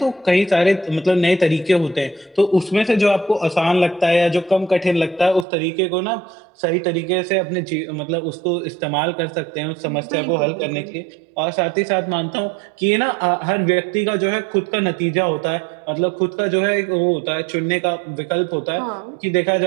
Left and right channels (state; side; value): drops out; left; at 5.5 s